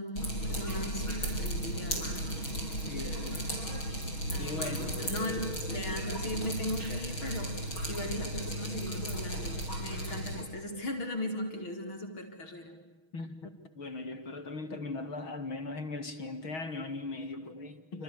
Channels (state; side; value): late; right; 6.3 ms